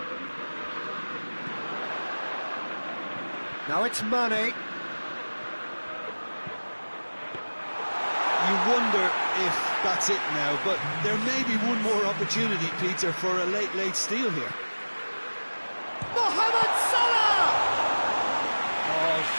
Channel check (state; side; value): inverted; both; correlation -1.00